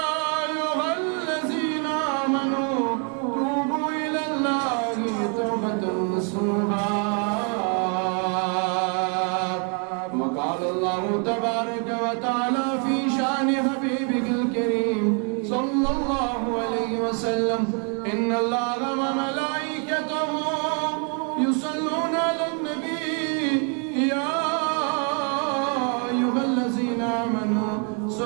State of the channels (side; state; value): left; quieter; 39.2 dB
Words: أيها الذين آمنوا توبوا إلى الله توبة نصوحا. وقال الله تبارك وتعالى في شأن حبيبه الكريم صلى الله عليه وسلم إن الله وملائكته يصلون على النبي يا أيها الذين آمنوا